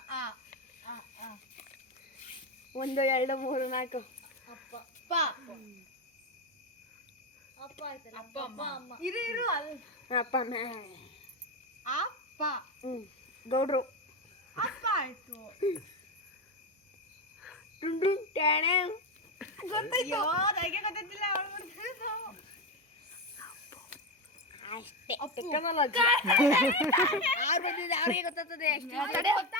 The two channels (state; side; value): normal; both; correlation 0.13